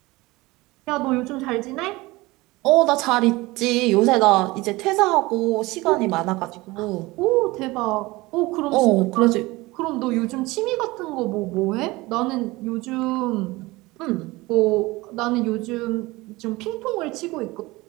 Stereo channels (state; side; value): quieter; left; 21.2 dB